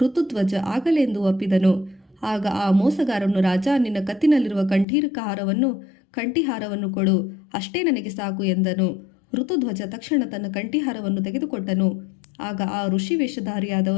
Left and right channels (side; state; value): right; drops out; at 4.9 s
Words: ಆಗಲೆಂದು ಒಪ್ಪಿದನು. ಆಗ ಆ ಮೋಸಗಾರನು, ರಾಜ, ನಿನ್ನ ಕತ್ತಿನಲ್ಲಿರುವ ಕಂಠಿಹಾರವನ್ನು ಕೊಡು, ಅಷ್ಟೇ ನನಗೆ ಸಾಕು ಎಂದನು. ಋತುಧ್ವಜ ತಕ್ಷಣ ತನ್ನ ಕಂಠಿಹಾರವನ್ನು ತೆಗೆದುಕೊಟ್ಟನು. ಆಗ ಆ ಋಷಿ